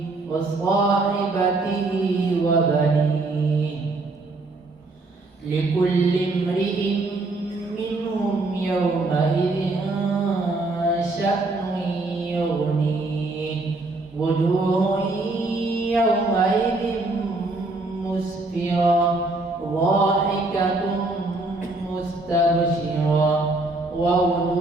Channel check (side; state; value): left; quieter; 3.1 dB